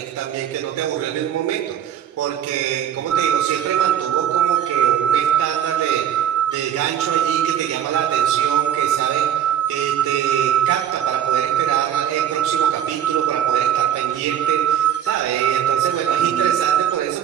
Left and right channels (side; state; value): left; quieter; 10.1 dB